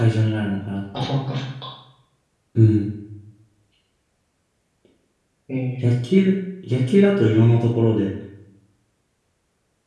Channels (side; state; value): both; identical; correlation 1.00